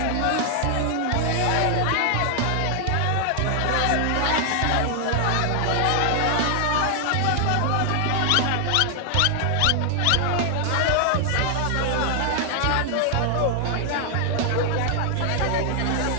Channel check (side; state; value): both; different; correlation 0.00